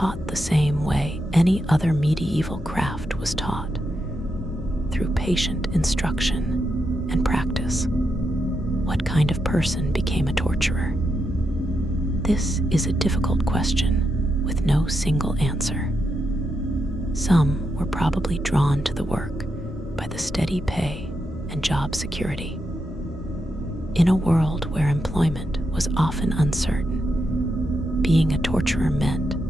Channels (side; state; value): both; normal; correlation 0.84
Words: the same way any other medieval craft was taught, through patient instruction and practice. What kind of person became a torturer? This is a difficult question with no single answer. Some were probably drawn to the work by the steady pay and job security. In a world where employment was often uncertain, being a torturer meant